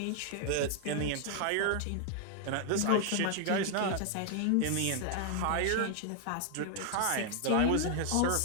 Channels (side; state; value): both; different; correlation 0.00